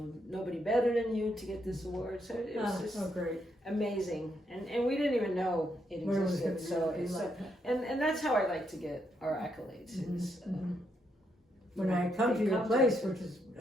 nobody better than you to get this award. So it was just great. Amazing. And we didn't even know it existed. And that's how I like to get our accolades. Is, when I come to your place, which is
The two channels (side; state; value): both; normal; correlation 0.78